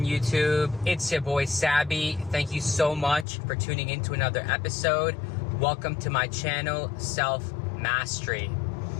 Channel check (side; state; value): right; drops out; at 3.2 s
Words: YouTube? It's your boy Sabby. Thank you so much for tuning into another episode. Welcome to my channel, Self Mastery.